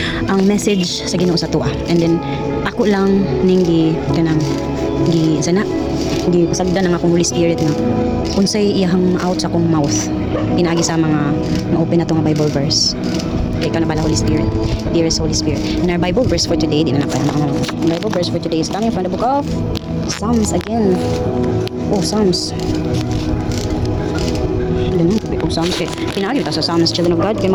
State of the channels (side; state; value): both; identical; correlation 1.00